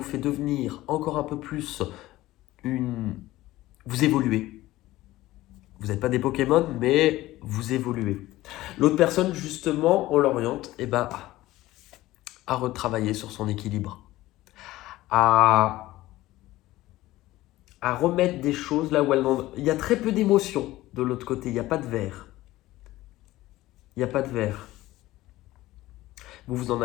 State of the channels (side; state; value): right; quieter; 16.9 dB